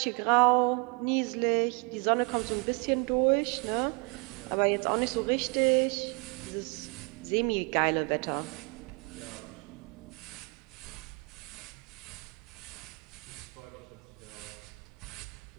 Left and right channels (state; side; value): quieter; left; 32.3 dB